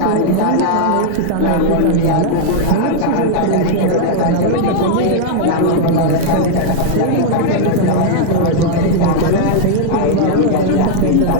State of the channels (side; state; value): both; different; correlation -0.01